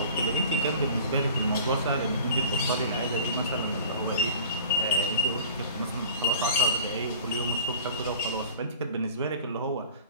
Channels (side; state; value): both; inverted; correlation -0.43